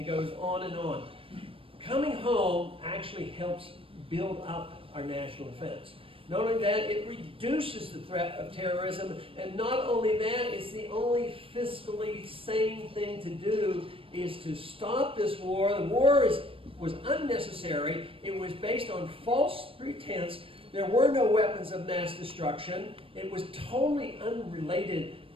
goes on and on. Coming home actually helps build up our national defense. Not only that, it reduces the threat of terrorism, and not only that, it's the only fiscally sane thing to do is to stop this war. The war was unnecessary. It was based on false pretense. There were no weapons of mass destruction. It was totally unrelated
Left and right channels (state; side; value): late; left; 0.26 ms